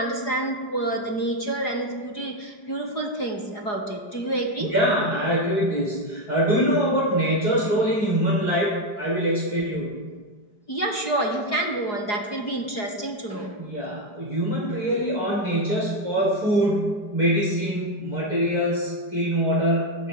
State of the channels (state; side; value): late; right; 4.8 ms